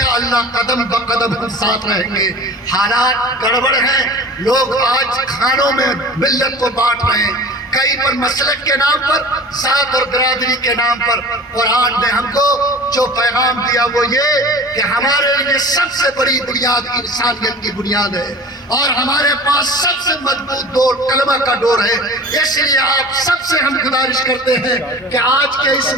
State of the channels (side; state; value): both; normal; correlation 0.39